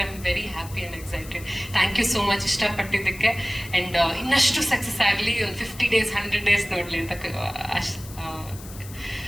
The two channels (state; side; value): noise; left; hiss, 17 dB below the sound